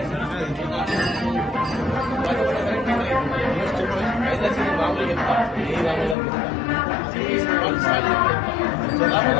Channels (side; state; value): right; drops out; at 6.2 s